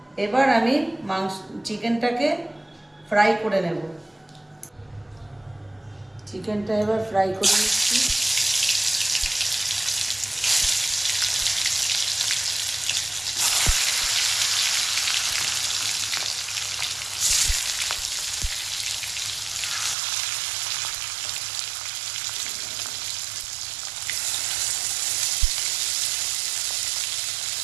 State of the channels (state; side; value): drops out; left; at 20.0 s